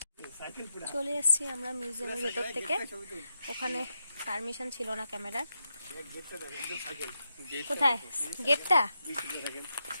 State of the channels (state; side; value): inverted; both; correlation -0.86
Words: চলে এসেছি আমরা মিউজিয়ামের ভেতর থেকে। ওখানে পারমিশন ছিল না ক্যামেরার। কোথায় গেটটা?